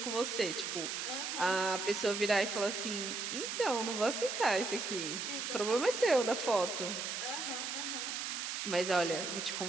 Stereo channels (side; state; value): right; noise; hiss, 3 dB below the sound